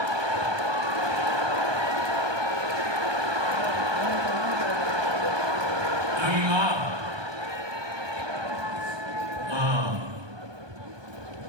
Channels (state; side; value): late; left; 1.2 ms